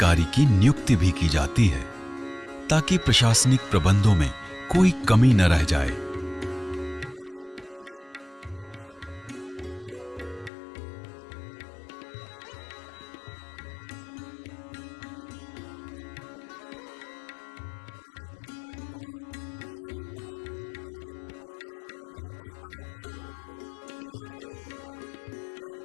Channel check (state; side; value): drops out; right; at 10.5 s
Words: की नियुक्ति भी की जाती है ताकि प्रशासनिक प्रबंधों में कोई कमी न रह जाए। 84 कोसी नैमिषारण्य परिक्रमा मेला होली के पहले अमावस्या से चालू किया जाता है और 22 मार्च एक महीने लगातार प्रतिवर्ष चलता है। 84 कोसी परिक्रमा मेला यहाँ का महत्वपूर्ण मेला है। वर्तमान समय में नगर पालिका और मेला अधिकारी के उप जिला